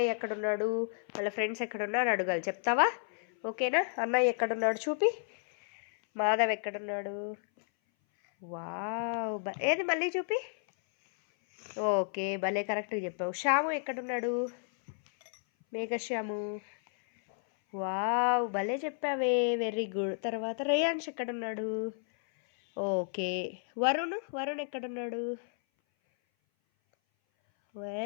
ఎక్కడున్నాడు, వాళ్ళ ఫ్రెండ్స్ ఎక్కడున్నాడు అడగాలి, చెప్తావా? ఓకేనా? అన్నయ్య ఎక్కడున్నాడు చూపి. మాధవ్ ఎక్కడున్నాడు? వావ్, ఏది మళ్ళీ చూపి. ఓకే, భలే కరెక్ట్గా చెప్పావు. శ్యాము ఎక్కడున్నాడు? మేఘశ్యాము. వావ్, భలే చెప్పావే, వెరీ గుడ్. తర్వాత రేయాన్ష్ ఎక్కడున్నాడు? ఓకే. వరుణ్ ఎక్కడున్నాడు?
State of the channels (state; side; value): silent; right; 56 dB below the other